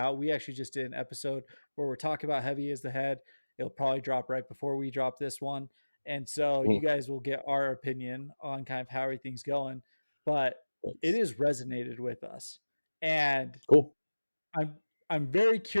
We actually just did an episode where we're talking about Heavy as the Head. It'll probably drop right before we drop this one. And so you guys will get our opinion on kind of how everything's going. But it has resonated with us. And cool. I'm very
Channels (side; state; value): both; inverted; correlation -1.00